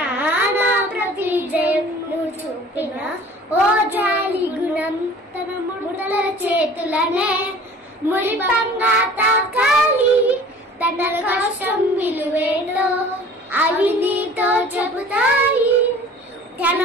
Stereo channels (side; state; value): both; normal; correlation 0.46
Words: నా ప్రతి జయం నువ్వు చూపిన ఓ జాలి గుణం. తన ముడతల చేతులనే మురిపంగా తాకాలి. తన కష్టం విలువేలో అవి నీతో చెబుతాయి. తన